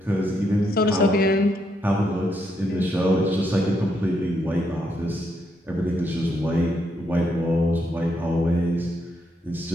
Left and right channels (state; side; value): normal; both; correlation 0.77